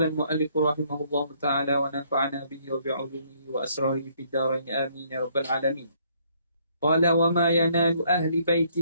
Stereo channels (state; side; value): inverted; both; correlation -0.67